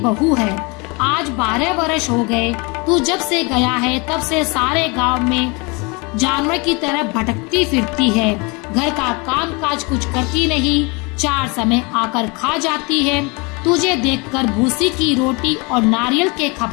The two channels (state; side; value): quieter; right; 28.9 dB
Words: है। आज 12 वर्ष हो गए, तू जब से गया है तब से सारे गांव में जानवर की तरह भटकती फिरती है। घर का काम काज कुछ करती नहीं, 4 समय आकर खा जाती है। तुझे देखकर भूसी की रोटी और नारियल के